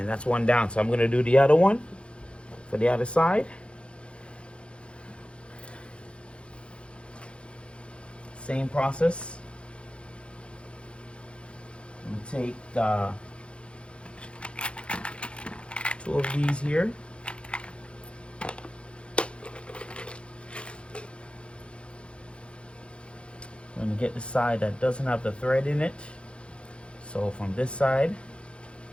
that's one down. So I'm going to do the other one for the other side. Same process. I'm going to take two of these here. I'm going to get the side that doesn't have the thread in it. So from this side,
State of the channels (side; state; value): right; late; 0.058 ms